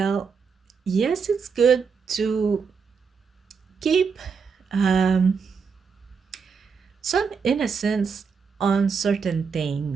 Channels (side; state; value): left; quieter; 5.7 dB